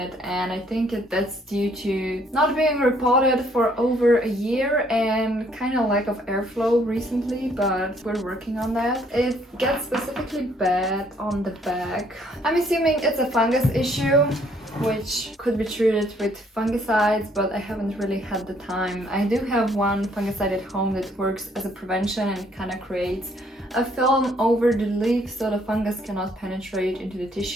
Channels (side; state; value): both; normal; correlation 0.65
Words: and I think that's due to not being repotted for over a year and kind of lack of airflow recently, but we're working on that. It gets specifically bad on the back. I'm assuming it's a fungus issue, which could be treated with fungicides, but I haven't really had the time. I do have one fungicide at home that works as a prevention and kind of creates a film over the leaf so the fungus cannot penetrate into the